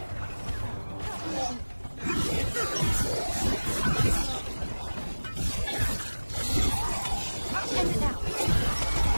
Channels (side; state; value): both; inverted; correlation -1.00